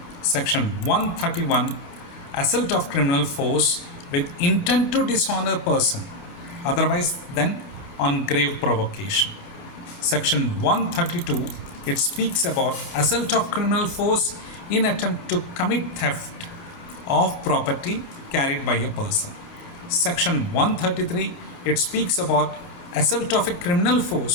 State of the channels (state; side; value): late; right; 29 ms